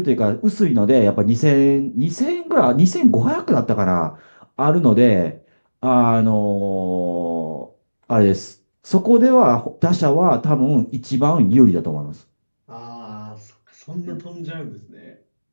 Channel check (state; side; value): inverted; both; correlation -1.00